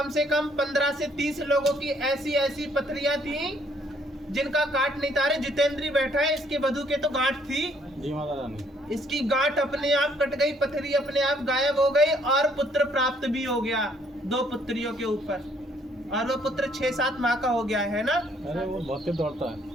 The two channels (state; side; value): normal; both; correlation 0.65